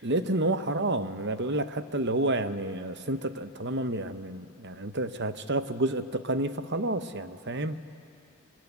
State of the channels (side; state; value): both; normal; correlation -0.01